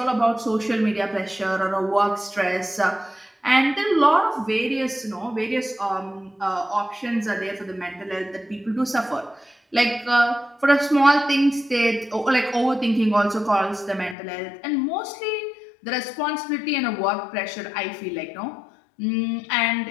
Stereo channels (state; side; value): drops out; right; at 14.2 s